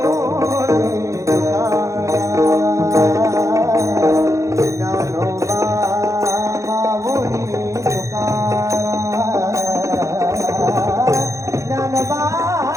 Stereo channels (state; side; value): late; left; 0.15 ms